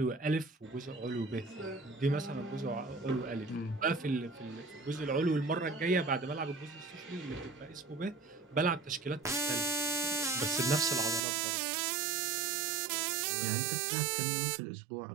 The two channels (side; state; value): left; drops out; at 11.2 s